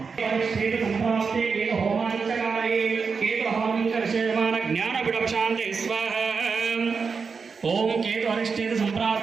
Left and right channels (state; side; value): quieter; left; 5.3 dB